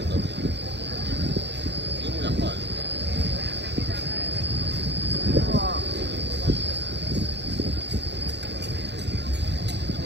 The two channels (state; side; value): late; left; 0.50 ms